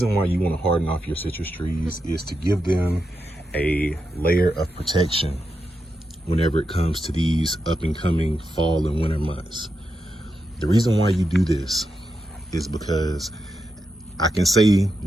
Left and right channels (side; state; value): both; normal; correlation 0.86